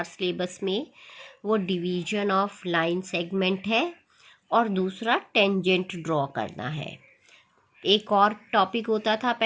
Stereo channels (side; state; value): both; identical; correlation 1.00